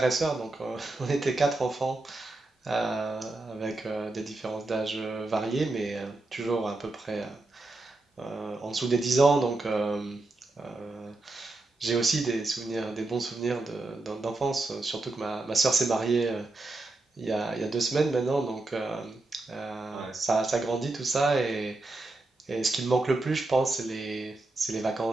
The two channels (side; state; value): left; quieter; 3.0 dB